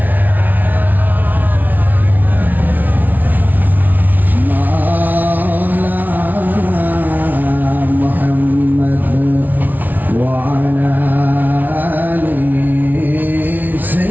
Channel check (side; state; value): left; late; 0.081 ms